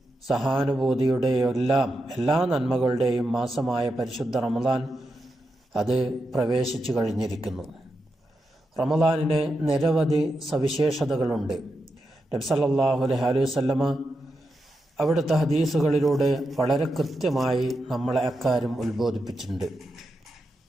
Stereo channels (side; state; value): both; normal; correlation 0.87